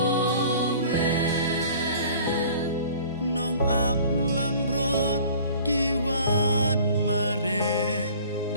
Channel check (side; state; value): both; inverted; correlation -0.47